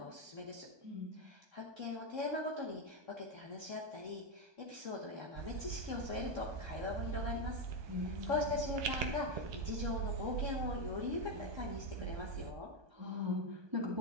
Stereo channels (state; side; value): late; left; 1.2 ms